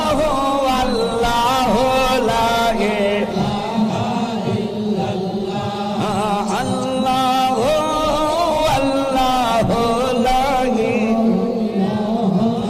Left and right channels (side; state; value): both; identical; correlation 1.00